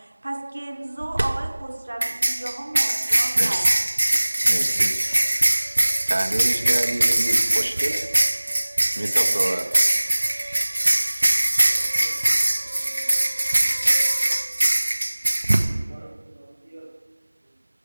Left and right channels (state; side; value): inverted; both; correlation -1.00